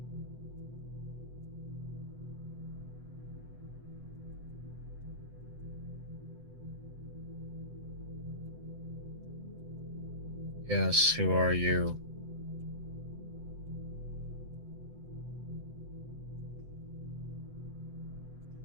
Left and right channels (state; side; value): late; left; 7.9 ms